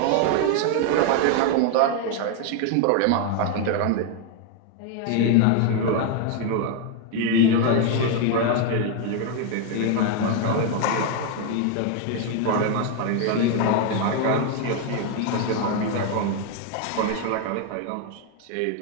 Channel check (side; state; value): both; different; correlation 0.01